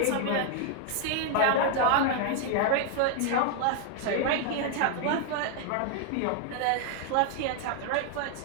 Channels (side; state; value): both; different; correlation 0.00